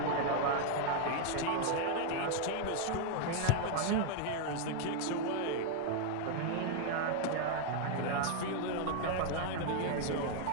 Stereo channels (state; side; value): different; both; correlation 0.00